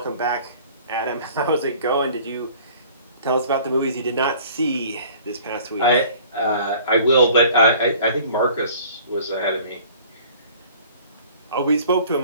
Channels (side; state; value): both; inverted; correlation -0.50